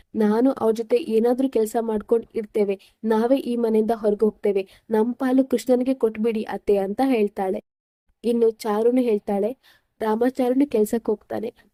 ನಾನು ಅವ್ರ ಜೊತೆ ಏನಾದ್ರೂ ಕೆಲಸ ಮಾಡ್ಕೊಂಡು ಇರ್ತೇವೆ, ನಾವೇ ಈ ಮನೆಯಿಂದ ಹೊರಗೆ ಹೋಗ್ತೇವೆ, ನಮ್ ಪಾಲು ಕೃಷ್ಣನಿಗೆ ಕೊಟ್ಬಿಡಿ ಅತ್ತೆ ಅಂತ ಹೇಳ್ತಾಳೆ. ಇನ್ನು ಚಾರುನು ಹೇಳ್ತಾಳೆ, ರಾಮಾಚಾರುನು ಕೆಲ್ಸಕ್ಕೆ ಹೋಗ್ತಾನೆ,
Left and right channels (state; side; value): identical; both; correlation 1.00